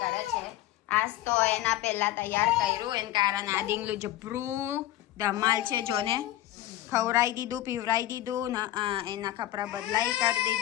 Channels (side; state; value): right; quieter; 14.4 dB